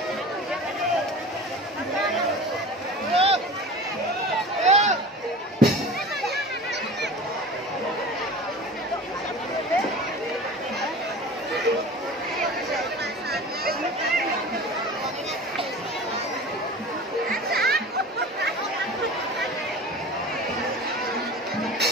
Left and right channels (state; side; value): normal; both; correlation 0.37